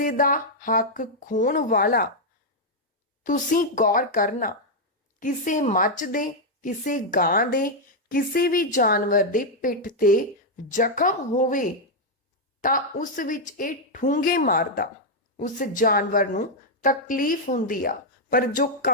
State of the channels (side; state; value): both; normal; correlation -0.01